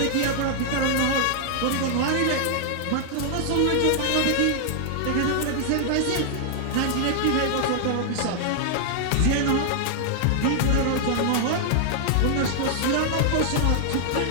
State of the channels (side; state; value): both; different; correlation -0.01